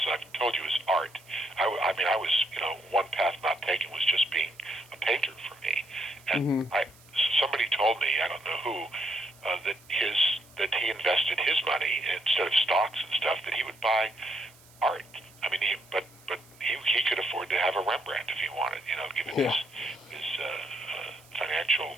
I've told you, is art. I was, one path not taken was just being a painter for me. And somebody told me, I don't know who, that he invested his money instead of stocks and stuff, that he would buy art. I mean, but he could afford to have a Rembrandt if he wanted, given his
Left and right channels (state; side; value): noise; right; hiss, 25 dB below the sound